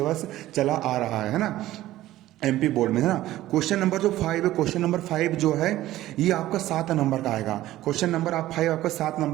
चला आ रहा है ना एमपी बोर्ड में, है ना। क्वेश्चन नंबर जो 5 है, क्वेश्चन नंबर 5 जो है ये आपका 7 नंबर का आएगा। क्वेश्चन नंबर 5 आपका 7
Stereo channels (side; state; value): left; quieter; 15.1 dB